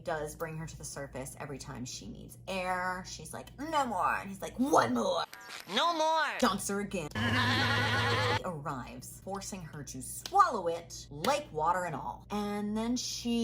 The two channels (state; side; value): identical; both; correlation 1.00